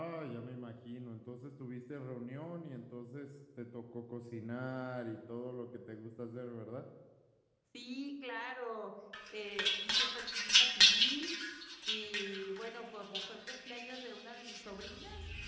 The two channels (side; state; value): both; identical; correlation 1.00